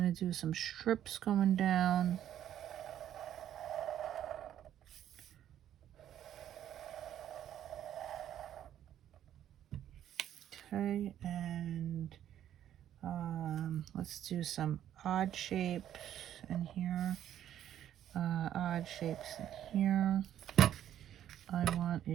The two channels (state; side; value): quieter; left; 11.0 dB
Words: to do some strips going down. Okay, and let's do some odd shapes in here. Odd shapes in here. I want